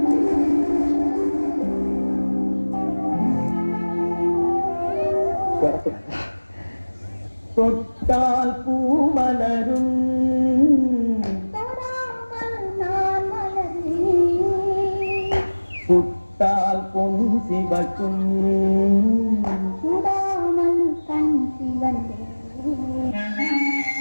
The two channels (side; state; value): both; inverted; correlation -1.00